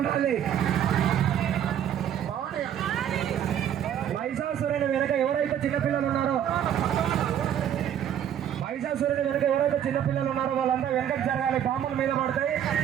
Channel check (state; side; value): quieter; left; 9.9 dB